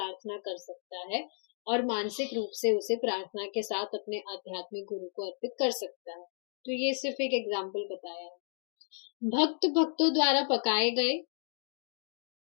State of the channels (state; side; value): silent; right; digital silence